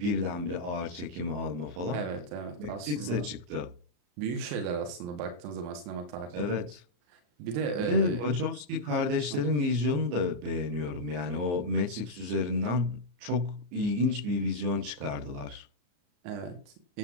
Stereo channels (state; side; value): late; left; 34 ms